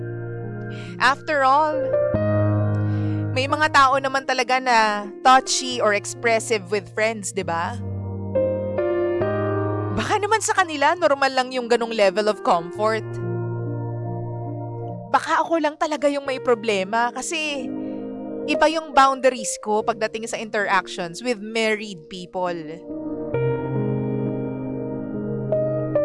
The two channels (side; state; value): both; identical; correlation 1.00